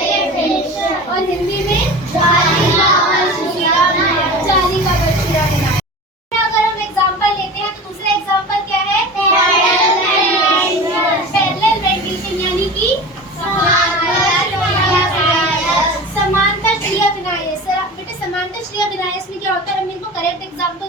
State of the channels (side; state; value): both; normal; correlation 0.34